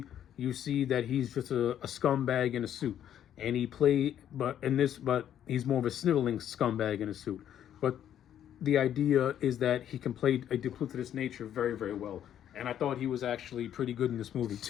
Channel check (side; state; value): right; quieter; 10.3 dB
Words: you see that he's just a scumbag in a suit, and but he's more of a sniveling scumbag in a suit. But the idea is that he can play a duplicitous nature very, very well, and I thought he was actually pretty good in this movie